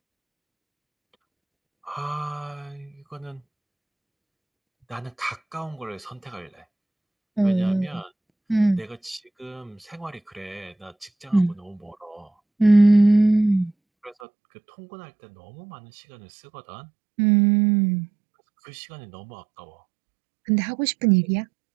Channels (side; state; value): left; drops out; at 14.2 s